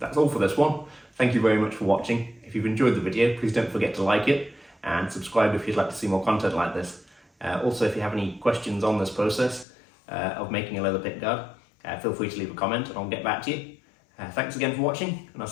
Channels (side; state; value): right; drops out; at 9.7 s